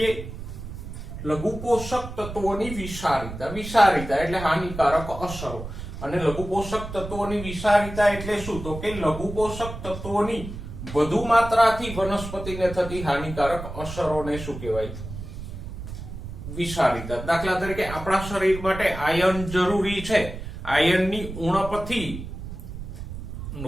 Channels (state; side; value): noise; right; rumble, 9 dB below the sound